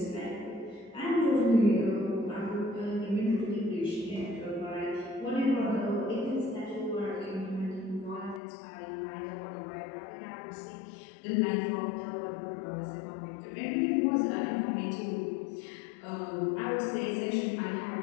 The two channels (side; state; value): right; drops out; at 8.4 s